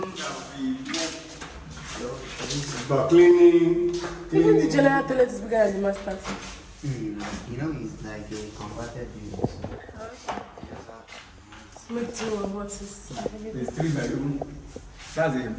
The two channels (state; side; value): identical; both; correlation 1.00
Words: But cleaning. Even the general toilet is bigger than the master's. you know, it's like a converted unit. So Okay. Make two of what is available. It's 3 bedroom. That's a